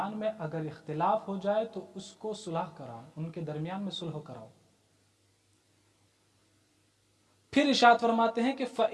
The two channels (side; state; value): both; identical; correlation 1.00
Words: میں اگر اختلاف ہو جائے تو اس کو صلح کراؤ، ان کے درمیان میں صلح کراؤ۔ پھر ارشاد فرماتے ہیں کہ